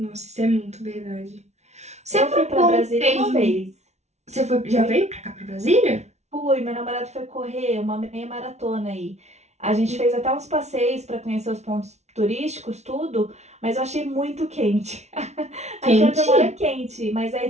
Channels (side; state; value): left; late; 0.32 ms